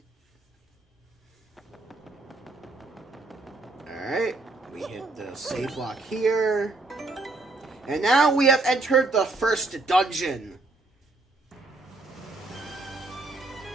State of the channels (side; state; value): left; quieter; 3.2 dB